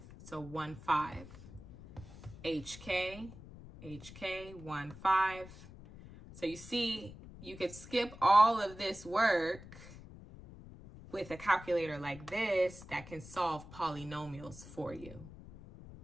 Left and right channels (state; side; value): noise; left; rumble, 16 dB below the sound